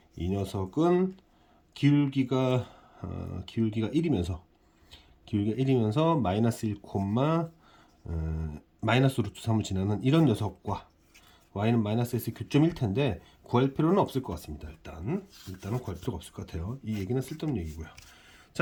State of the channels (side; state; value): both; identical; correlation 1.00